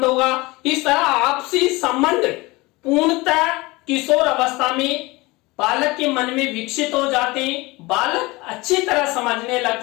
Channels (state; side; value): quieter; right; 22.7 dB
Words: होगा। इस तरह आपसी संबंध पूर्णतः किशोर अवस्था में बालक के मन में विकसित हो जाते हैं, बालक अच्छी तरह समझने लग